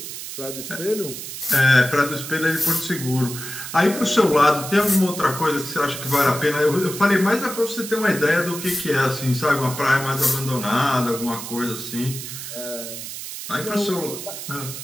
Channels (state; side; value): noise; right; hiss, 9 dB below the sound